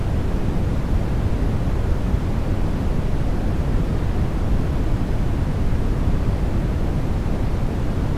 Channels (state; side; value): identical; both; correlation 1.00